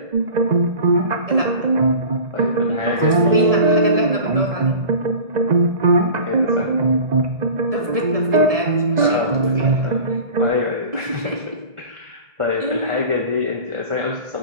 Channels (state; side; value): late; left; 1.7 ms